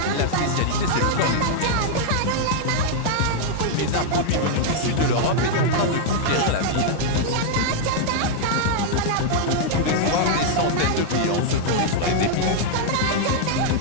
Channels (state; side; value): different; both; correlation -0.01